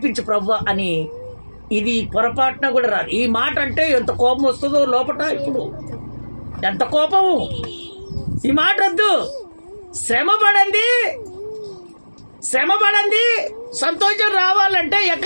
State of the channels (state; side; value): inverted; both; correlation -1.00